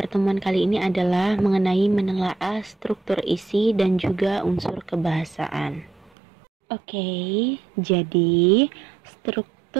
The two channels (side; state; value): left; drops out; at 6.1 s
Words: kali ini adalah mengenai menelaah struktur isi dan juga unsur kebahasaan. Oke, jadi